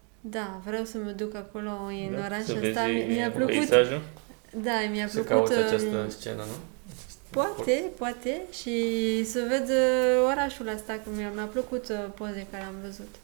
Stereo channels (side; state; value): left; quieter; 37.8 dB